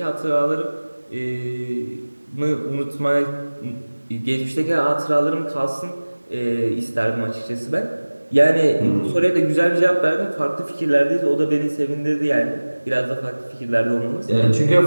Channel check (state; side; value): inverted; both; correlation -1.00